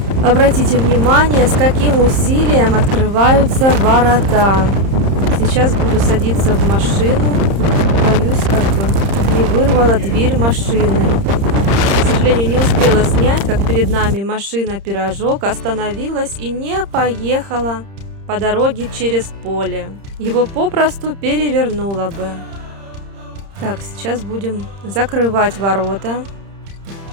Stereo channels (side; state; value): left; late; 30 ms